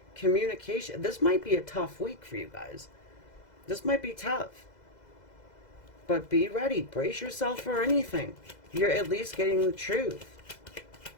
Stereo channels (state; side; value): late; right; 2.0 ms